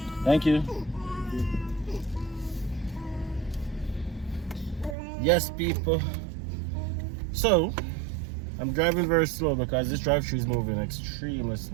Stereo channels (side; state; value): left; drops out; at 5.0 s